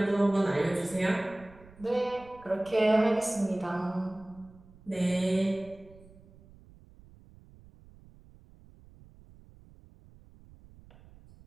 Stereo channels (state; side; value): noise; right; rumble, 24 dB below the sound